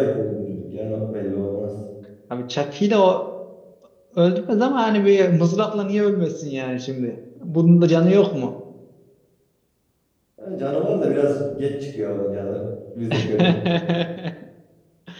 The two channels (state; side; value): identical; both; correlation 1.00